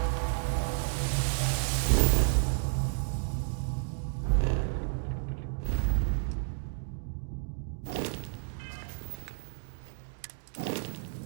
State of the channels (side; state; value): left; silent; digital silence